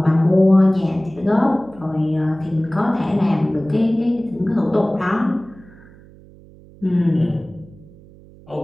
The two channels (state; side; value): noise; right; hum, 23 dB below the sound